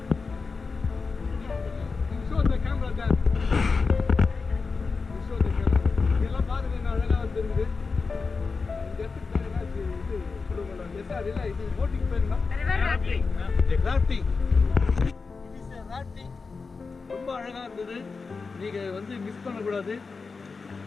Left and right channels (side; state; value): right; quieter; 4.6 dB